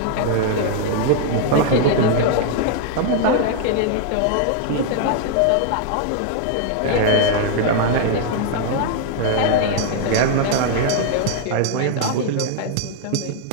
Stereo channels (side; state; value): both; different; correlation 0.00